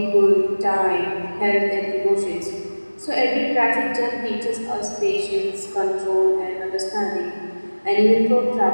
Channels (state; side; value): inverted; both; correlation -1.00